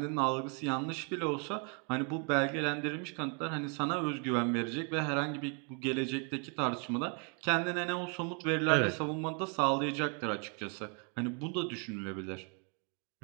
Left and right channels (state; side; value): quieter; left; 37.8 dB